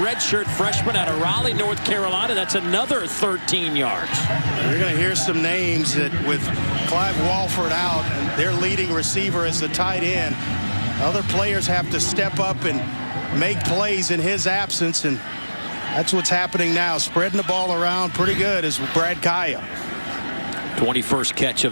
redshirt freshman out of Raleigh, North Carolina. That's another 13 yards. You're going to hear some names that, with Clive Walford out and their leading receiver as the tight end, other players have to step up and make plays in his absence, and that's what's happening now. Spreading the ball around pretty good is Brad Kaya. 21st catch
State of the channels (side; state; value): both; inverted; correlation -1.00